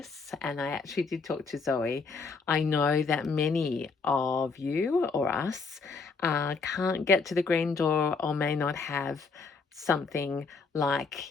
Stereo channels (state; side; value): quieter; right; 4.7 dB